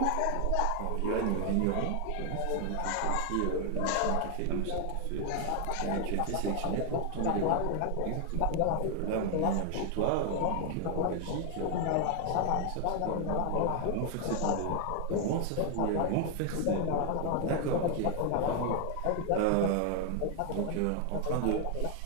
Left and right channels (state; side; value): different; both; correlation 0.00